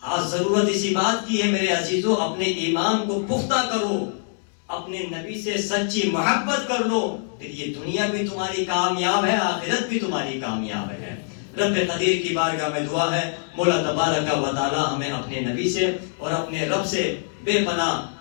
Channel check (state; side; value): silent; right; 63 dB below the other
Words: آج ضرورت اسی بات کی ہے میرے عزیزوں، اپنے ایمان کو پختہ کرو، اپنے نبی سے سچی محبت کر لو، پھر یہ دنیا بھی تمہاری کامیاب ہے، آخرت بھی تمہاری کامیاب ہے. رب قدیر کی بارگاہ میں دعا ہے مولا تبارک و تعالی ہمیں اپنے نبی سے اور اپنے رب سے بے پناہ